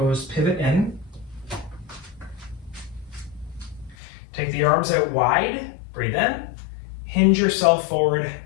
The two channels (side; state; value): right; drops out; at 4.0 s